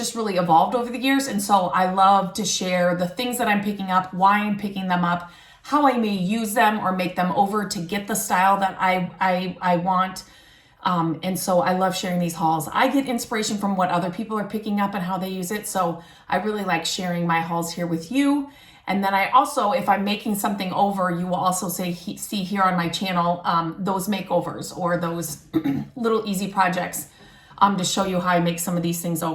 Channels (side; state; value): both; identical; correlation 1.00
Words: really evolved over the years. And so I love to share the things that I'm picking up, why I'm picking them up, how I may use them or make them over to get the style that I want. And so I love sharing these hauls. I get inspiration from what other people are picking up and how they use it. So I really like sharing my hauls here with you. And then I also, if I'm making something over, you will also see here on my channel, those makeovers or those little easy projects to show you how I make some of these things